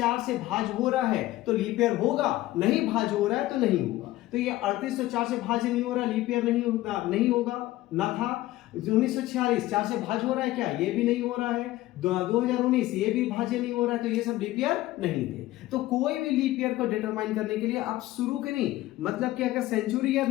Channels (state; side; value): quieter; right; 16.6 dB